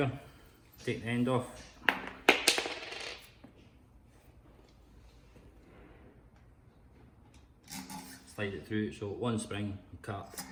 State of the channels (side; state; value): both; identical; correlation 1.00